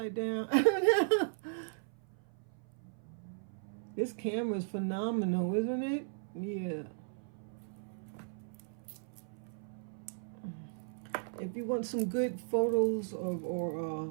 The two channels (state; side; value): silent; left; 53 dB below the other